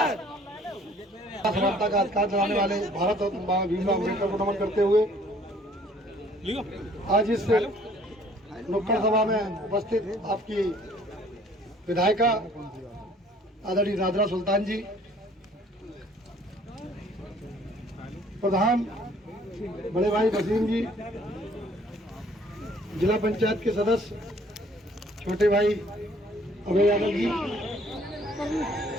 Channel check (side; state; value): both; normal; correlation 0.58